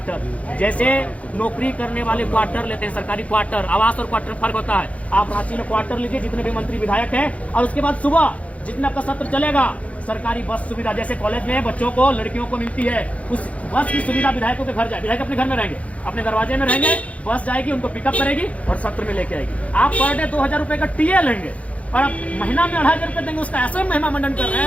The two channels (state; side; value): late; right; 0.065 ms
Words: जैसे नौकरी करने वाले क्वार्टर लेते हैं, सरकारी क्वार्टर, आवास और क्वार्टर फर्क होता है। आप रांची में क्वार्टर लीजिए, जितने भी मंत्री विधायक हैं, और उसके बाद सुबह जितना आपका सत्र चलेगा, सरकारी बस सुविधा जैसे कॉलेज में बच्चों को, लड़कियों को मिलती है, उस बस की सुविधा विधायकों के घर जाए। विधायक अपने घर में रहेंगे, अपने दरवाजे में रहेंगे, बस जाएगी, उनको पिकअप करेगी और सत्र में लेके आएगी। आप पर डे 2,000 रुपए का टीए लेंगे और आप महीना में 2,500 रुपए देंगे, उसका ऐसे महिमा मंडन कर रहे